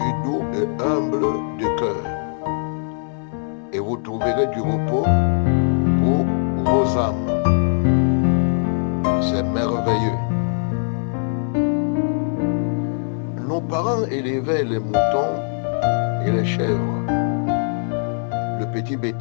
doux et humble de cœur, et vous trouverez du repos pour vos âmes. » C'est merveilleux. Nos parents élevaient les moutons et les chèvres, le petit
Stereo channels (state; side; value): silent; right; digital silence